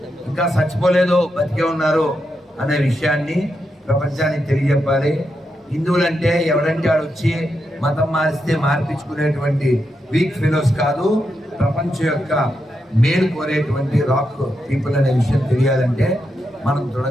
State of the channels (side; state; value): both; normal; correlation 0.85